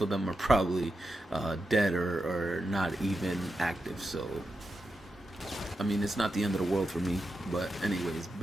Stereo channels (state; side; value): normal; both; correlation 0.88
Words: of them are probably dead or not even active. So I mean, it's not the end of the world for me. But anyways,